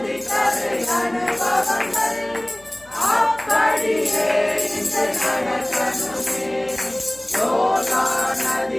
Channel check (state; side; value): noise; left; hum, 27 dB below the sound